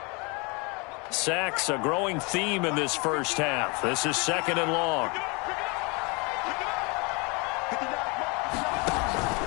Sacks, a growing theme in this first half. This is 2nd and long.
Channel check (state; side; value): quieter; right; 29.7 dB